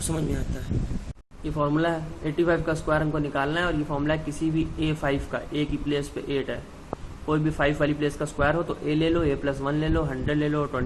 समझ में आता है। ये फॉर्मूला है, 85 का स्क्वायर हमको निकालना है और ये फॉर्मूला है किसी भी A5 का, A की प्लेस पे 8 है, कोई भी 5 वाली प्लेस का स्क्वायर हो तो A ले लो, A+1 ले लो, 100 ले लो,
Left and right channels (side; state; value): both; identical; correlation 1.00